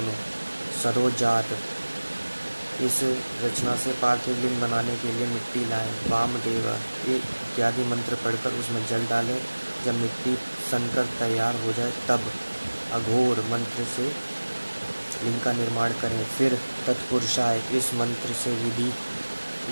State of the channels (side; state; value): both; inverted; correlation -1.00